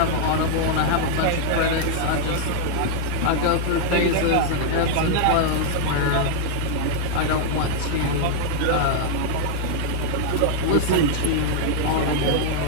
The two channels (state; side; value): different; both; correlation -0.01